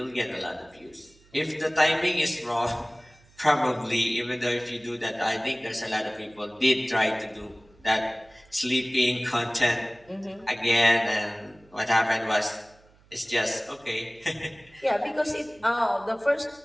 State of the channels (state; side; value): noise; right; hum, 29 dB below the sound